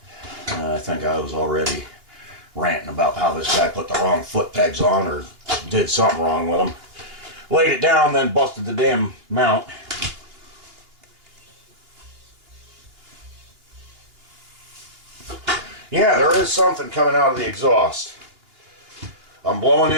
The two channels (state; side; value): late; left; 2.9 ms